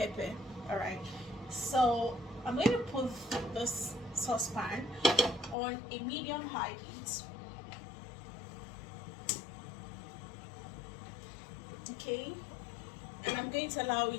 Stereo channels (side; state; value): right; drops out; at 5.6 s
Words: Alright, so I'm going to put this saucepan on a medium high heat. Okay, and I'm going to allow